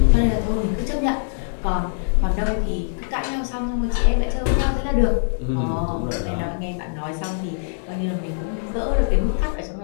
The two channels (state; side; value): silent; right; digital silence